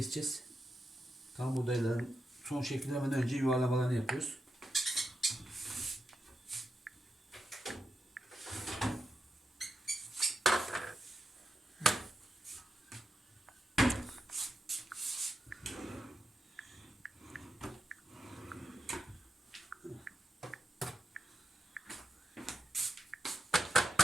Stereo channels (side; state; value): both; normal; correlation 0.88